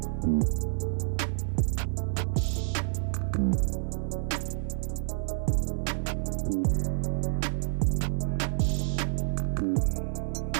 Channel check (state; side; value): silent; left; 59 dB below the other